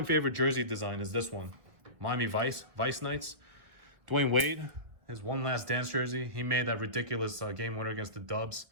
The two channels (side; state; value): left; late; 1.9 ms